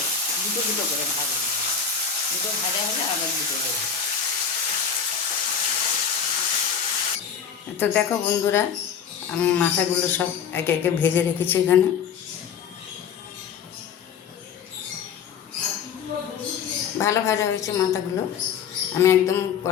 দুটো দুটো করে ভাজা, দুটো ভাজা হলে আবার দুটো দেবো। তো দেখো বন্ধুরা, আমি মাথাগুলো সব একে একে ভেজে রেখেছি এখানে। ভালো ভাজা হয়েছে মাথাগুলো। আমি একদম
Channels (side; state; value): right; quieter; 7.0 dB